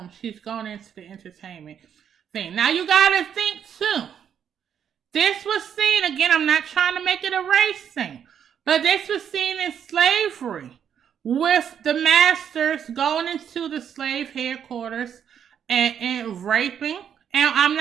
She's going into the entertainment thing. Now you got to think too, this was seen, again, I'm not trying to make it a race thing, but this was seen in slavery, with the masters going into the slave headquarters and raping. And I'm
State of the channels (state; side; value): quieter; left; 8.5 dB